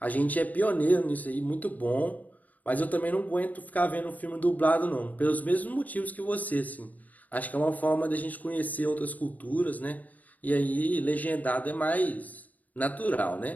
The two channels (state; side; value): late; right; 0.076 ms